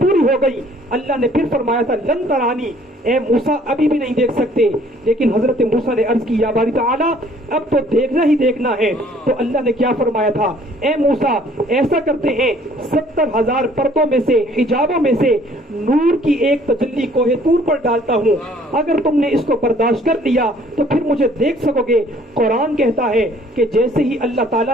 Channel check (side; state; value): both; normal; correlation 0.58